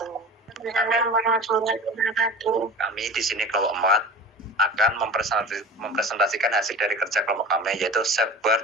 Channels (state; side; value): normal; both; correlation 0.36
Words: Kami di sini kelompok 4 akan mempresentasikan hasil dari kerja kelompok kami, yaitu